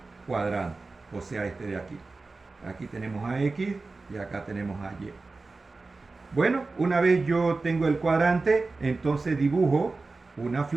cuadrante, o sea, este de aquí. Aquí tenemos a X y acá tenemos a Y. Bueno, una vez yo tengo el cuadrante, entonces dibujo una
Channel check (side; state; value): left; quieter; 3.7 dB